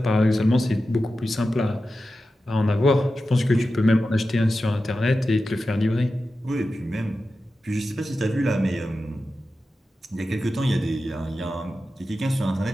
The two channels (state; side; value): normal; both; correlation 0.92